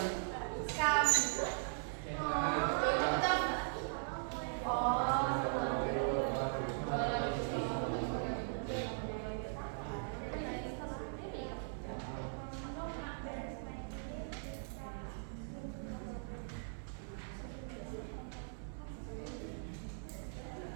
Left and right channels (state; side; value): silent; left; 51 dB below the other